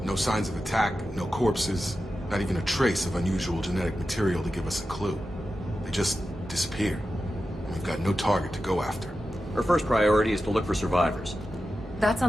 No signs of attack, no corpses, not even a trace of unusual genetic material to give us a clue. They just disappeared. And we've got no target to go after. Our first priority is to look for survivors. That's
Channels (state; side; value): normal; both; correlation 0.92